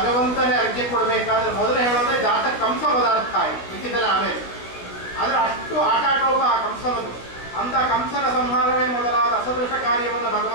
ಅರ್ಘ್ಯ ಕೊಡಬೇಕಾದ್ರೆ ಮೊದಲು ಹೇಳೋದೇ ಜಾತ ಕಂಸ ಪದಾರ್ಥ ಆಯಿತು, ಮಿಕ್ಕಿದ್ದೆಲ್ಲ ಆಮೇಲೆ. ಆದರೆ ಅಷ್ಟು ಆಟಾಟೋಪ ಆ ಕಂಸನದು. ಅಂತ ಕಂಸನ ಸಂಹಾರವೇ ಮೊದಲಾದ ಅಸದೃಶ ಕಾರ್ಯವನ್ನು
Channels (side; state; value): right; late; 17 ms